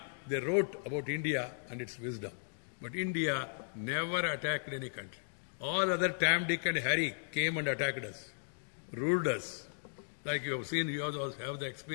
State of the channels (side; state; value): right; silent; digital silence